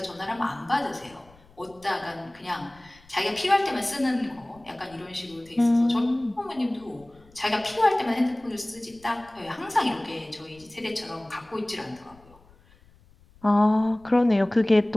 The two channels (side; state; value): left; noise; rumble, 27 dB below the sound